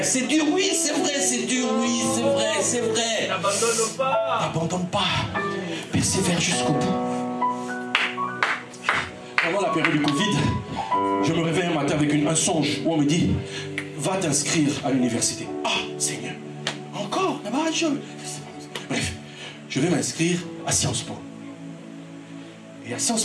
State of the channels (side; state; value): both; identical; correlation 1.00